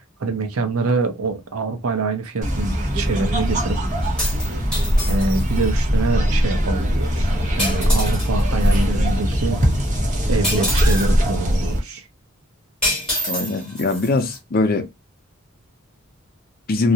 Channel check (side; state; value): both; normal; correlation 0.66